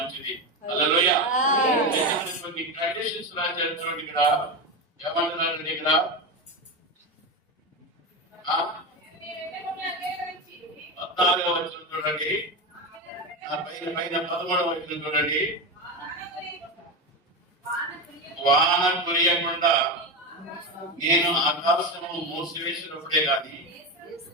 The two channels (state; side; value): normal; both; correlation 0.17